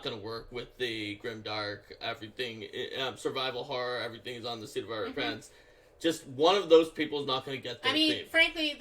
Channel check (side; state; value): both; identical; correlation 1.00